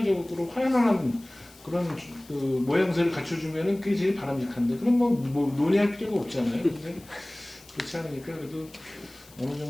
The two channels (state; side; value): noise; left; hiss, 24 dB below the sound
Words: 화연한 그런 그 모양새를 갖춰주면은 그게 제일 바람직한데 그럼 뭐 논의할 필요가 없잖아요. 근데 그렇지 않으니까 그래도 어느